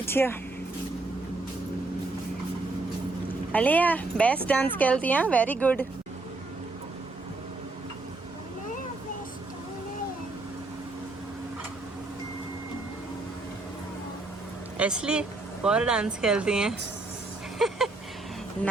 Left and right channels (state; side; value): quieter; left; 3.2 dB